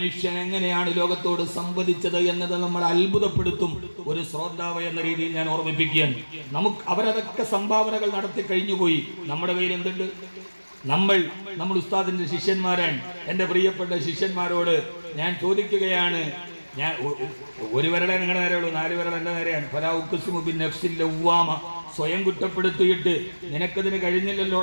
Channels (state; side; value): inverted; both; correlation -1.00